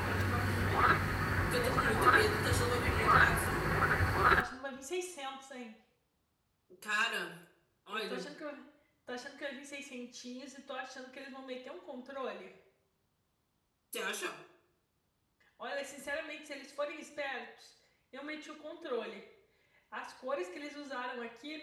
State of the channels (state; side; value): identical; both; correlation 1.00